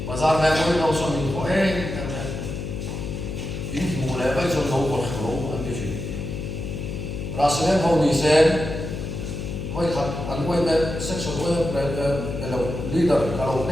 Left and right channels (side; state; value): left; noise; hum, 5 dB below the sound